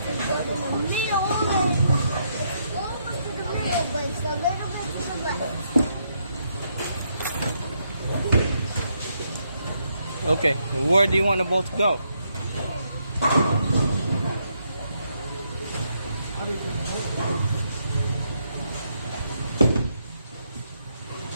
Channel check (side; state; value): both; inverted; correlation -0.77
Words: Okay, where do you want the ball to go?